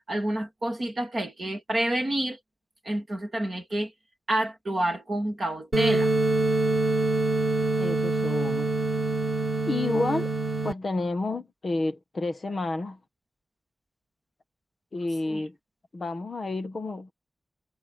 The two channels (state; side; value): normal; both; correlation 0.85